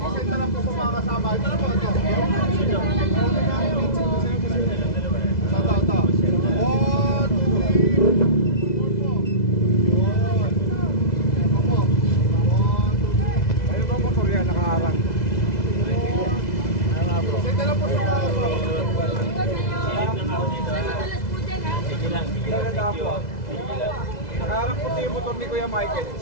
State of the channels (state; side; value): late; right; 2.0 ms